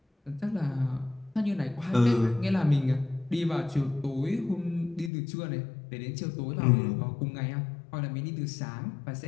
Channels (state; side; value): drops out; right; at 5.1 s